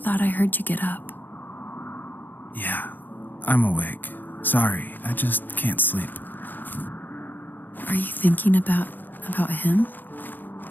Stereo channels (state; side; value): late; right; 0.089 ms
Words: I heard you get up. Yeah, I'm awake. Sorry, I just can't sleep. Are you thinking about him?